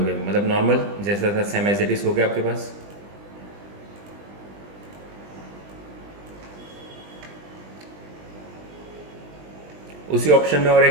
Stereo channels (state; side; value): late; left; 20 ms